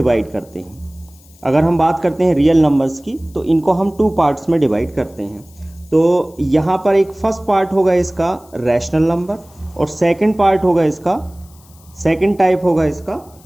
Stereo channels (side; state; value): left; noise; hiss, 28 dB below the sound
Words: करते हैं। अगर हम बात करते हैं रियल नंबर्स की, तो इनको हम 2 पार्ट्स में डिवाइड करते हैं। तो यहाँ पर एक फर्स्ट पार्ट होगा इसका रैशनल नंबर, और सेकंड पार्ट होगा इसका, सेकंड टाइप होगा इसका